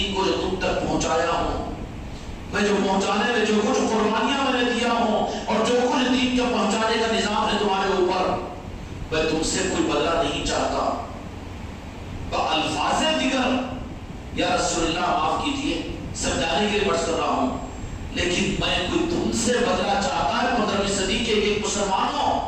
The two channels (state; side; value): identical; both; correlation 1.00